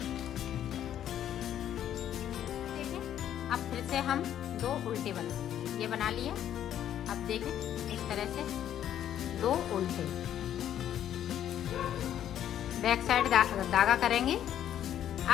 देखें, अब फिर से हम 2 उल्टे बनाएंगे। ये बना लिया। अब देखें, इस तरह से 2 उल्टे, बैक साइड धागा करेंगे।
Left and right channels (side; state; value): right; quieter; 10.7 dB